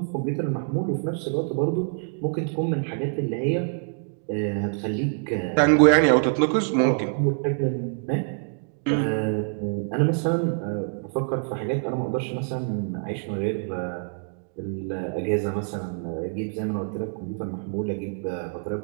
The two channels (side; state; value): left; silent; 61 dB below the other